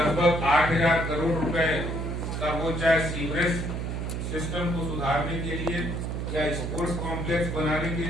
8000 करोड़ रुपए का, वो चाहे सीवरेज सिस्टम को सुधारने के लिए, या स्पोर्ट्स कॉम्प्लेक्स बनाने के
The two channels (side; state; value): right; noise; hum, 3 dB below the sound